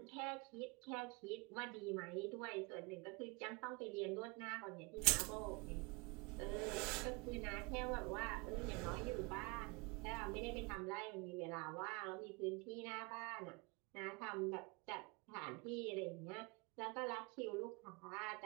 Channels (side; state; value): left; quieter; 28.7 dB